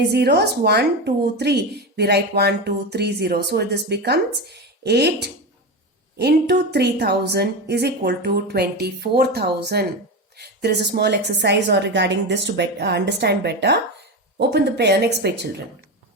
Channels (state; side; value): normal; both; correlation 0.19